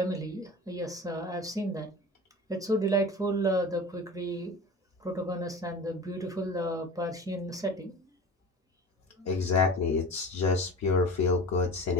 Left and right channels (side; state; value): both; normal; correlation 0.35